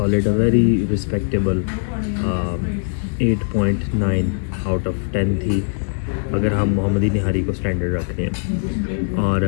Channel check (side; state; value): right; silent; digital silence